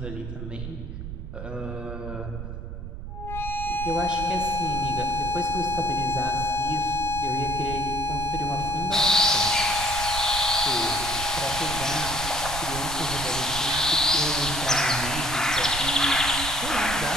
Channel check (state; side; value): noise; right; rumble, 8 dB below the sound